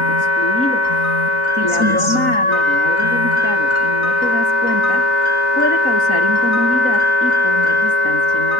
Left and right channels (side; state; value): right; late; 3.9 ms